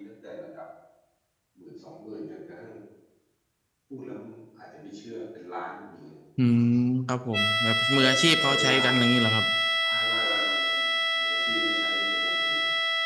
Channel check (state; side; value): identical; both; correlation 1.00